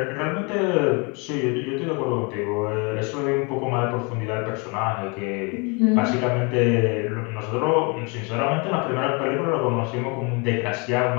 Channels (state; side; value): quieter; right; 31.5 dB